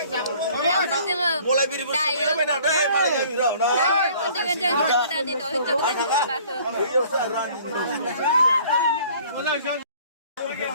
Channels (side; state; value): both; inverted; correlation -0.54